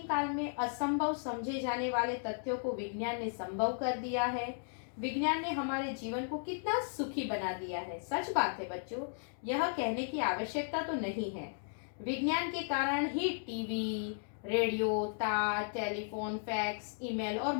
काल में असंभव समझे जाने वाले तथ्यों को विज्ञान ने संभव कर दिया है। विज्ञान ने हमारे जीवन को कितना सुखी बना दिया है। सच बात है बच्चों, यह कहने की आवश्यकता तो नहीं है। विज्ञान के कारण ही टीवी, रेडियो, तार, टेलीफोन, फैक्स, ईमेल और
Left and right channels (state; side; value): silent; right; digital silence